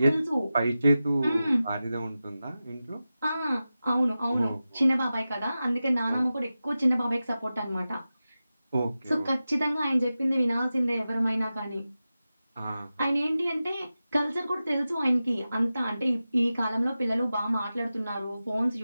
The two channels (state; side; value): inverted; both; correlation -0.94